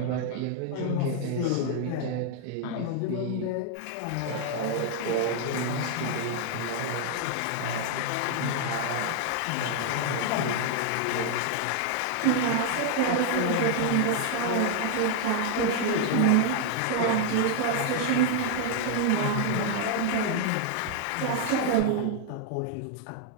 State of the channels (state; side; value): different; both; correlation 0.00